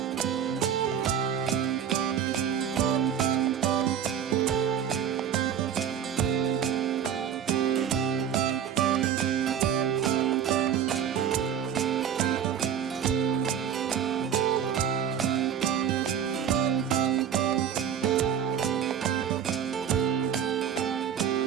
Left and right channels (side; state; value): left; quieter; 8.8 dB